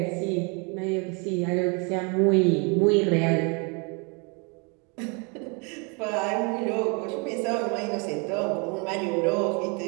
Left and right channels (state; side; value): quieter; left; 32.9 dB